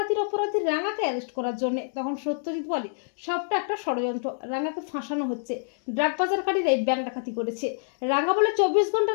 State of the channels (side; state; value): right; silent; digital silence